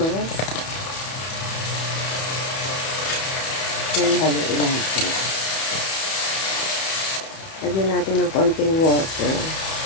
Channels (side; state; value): right; late; 31 ms